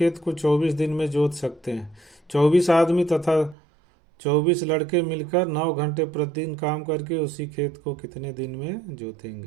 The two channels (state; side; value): drops out; left; at 3.6 s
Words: को 24 दिन में जोत सकते हैं। 24 आदमी तथा 24 लड़के मिलकर 9 घंटे प्रतिदिन काम करके उसी खेत को कितने दिन में